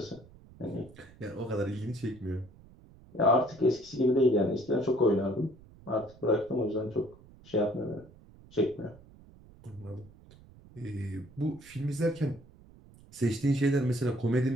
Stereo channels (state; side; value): noise; right; rumble, 23 dB below the sound